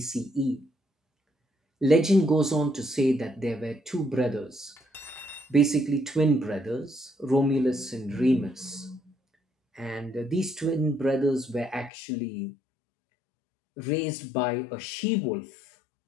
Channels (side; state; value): right; drops out; at 11.9 s